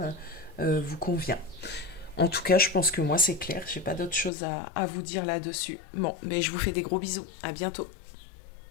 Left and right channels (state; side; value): drops out; right; at 4.3 s